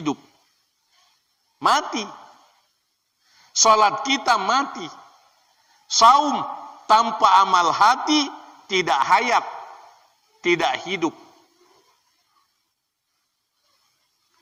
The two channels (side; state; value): both; identical; correlation 1.00